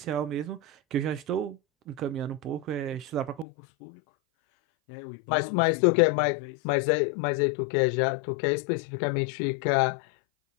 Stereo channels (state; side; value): drops out; right; at 3.5 s